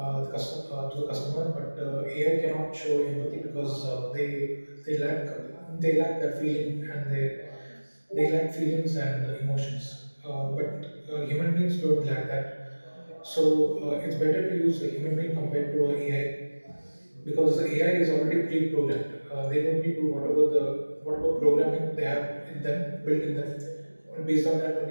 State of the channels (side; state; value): both; inverted; correlation -1.00